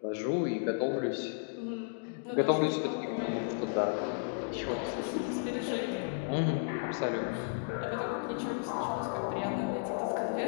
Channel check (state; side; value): silent; right; digital silence